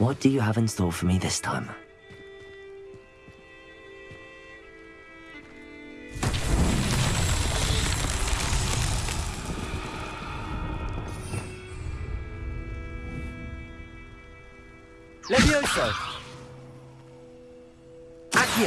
do you have in store for me this time? Levioso!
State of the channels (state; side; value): identical; both; correlation 1.00